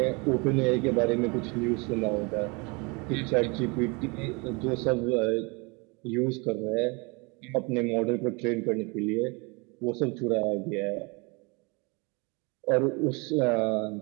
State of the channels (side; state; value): left; quieter; 29.2 dB